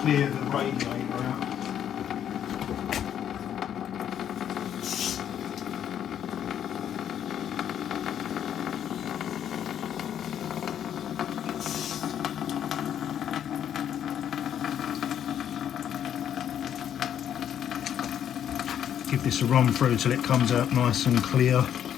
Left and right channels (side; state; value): right; quieter; 9.7 dB